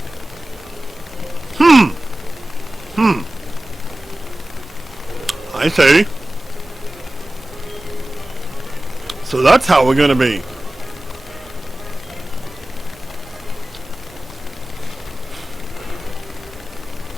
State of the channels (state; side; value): normal; both; correlation 0.96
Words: see. So that's how we're gonna be.